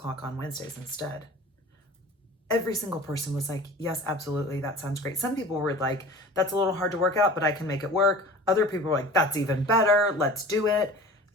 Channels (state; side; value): normal; both; correlation 0.40